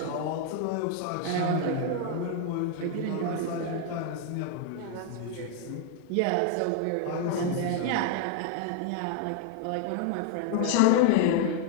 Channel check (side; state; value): both; different; correlation 0.00